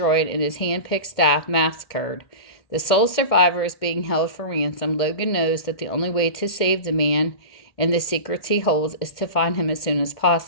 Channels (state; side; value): late; right; 2.2 ms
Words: and his hand-picked staff massacred. The sole survivor is being held for ransom. Logan knows that the only way to save the man and the secrets he holds is to find him as soon as